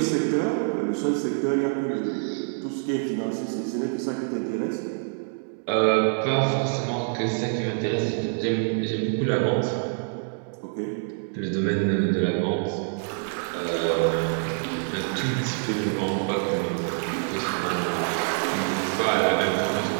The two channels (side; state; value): left; silent; digital silence